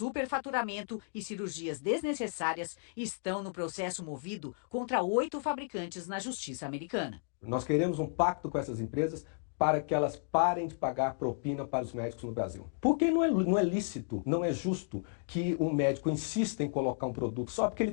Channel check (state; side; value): silent; right; digital silence